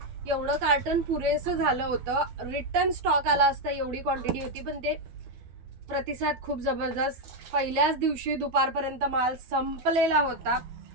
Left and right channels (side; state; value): left; late; 12 ms